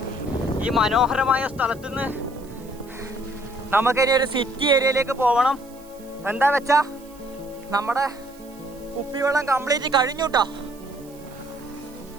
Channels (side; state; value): right; noise; hiss, 24 dB below the sound